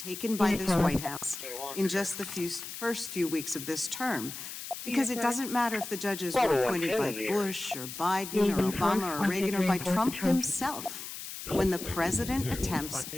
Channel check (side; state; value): left; noise; hiss, 9 dB below the sound